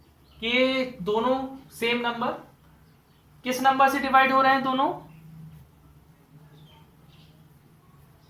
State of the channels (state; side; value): identical; both; correlation 1.00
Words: कि दोनों सेम नंबर, किस नंबर से डिवाइड हो रहे हैं दोनों